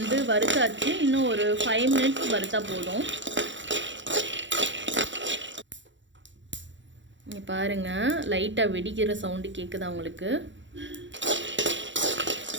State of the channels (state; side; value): late; left; 0.54 ms